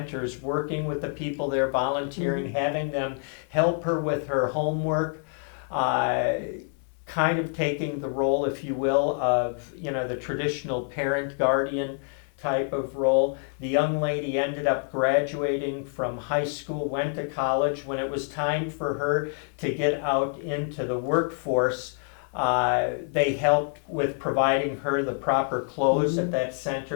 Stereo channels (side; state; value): right; silent; 56 dB below the other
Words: working with the people there, volunteering, having them help her with her homework. kind of taking the role, if you will, of, the traditional parent guardian type of role. The young lady ended up graduating from high school, went to college. When it was time for her to get out into the workforce, they helped with providing her the proper clothes at that